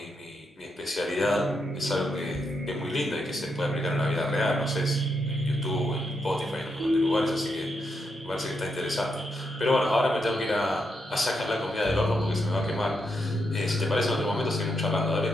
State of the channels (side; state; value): both; normal; correlation 0.82